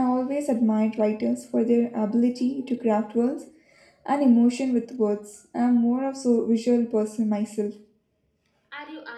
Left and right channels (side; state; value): both; identical; correlation 1.00